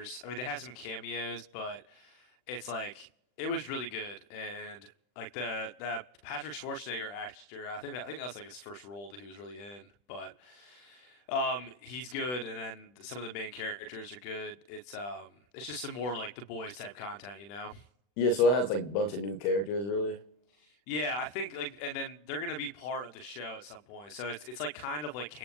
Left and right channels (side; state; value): right; late; 40 ms